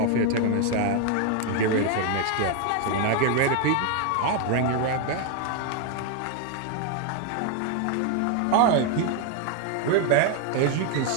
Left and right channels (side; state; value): both; different; correlation 0.01